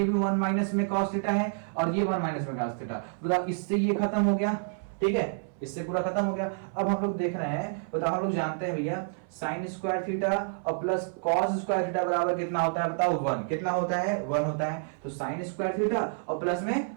भी 1 माइनस में cos थीटा है और ये 1 माइनस में cos थीटा, बताओ इससे ये खत्म हो गया, ठीक है, इससे पूरा खत्म हो गया। अब हम लोग देख रहे हैं, बताओ हम लोग जानते हैं भैया साइन स्क्वायर थीटा और प्लस कॉस स्क्वायर थीटा बराबर कितना होता है बताओ, 1, कितना होता है 1 होता है। तो साइन स्क्वायर थीटा और प्लस में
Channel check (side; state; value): left; silent; 58 dB below the other